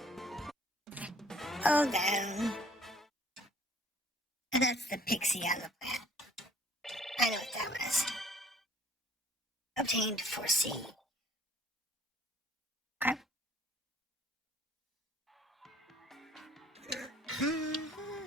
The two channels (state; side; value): normal; both; correlation 0.57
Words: Oh, down. And that's the pixie on the plant. I know what that was. Obtained for C. Okay.